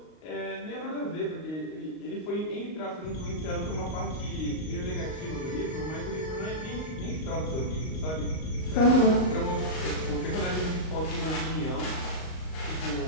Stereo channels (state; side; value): late; right; 38 ms